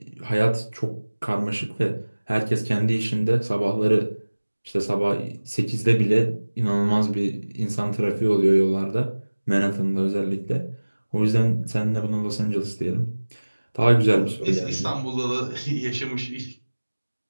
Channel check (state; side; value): inverted; both; correlation -1.00